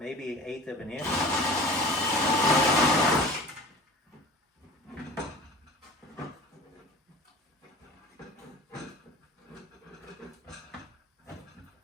1/8 of an inch.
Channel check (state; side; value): normal; both; correlation 0.41